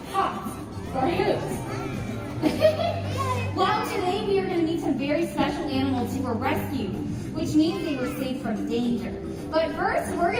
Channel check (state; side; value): identical; both; correlation 1.00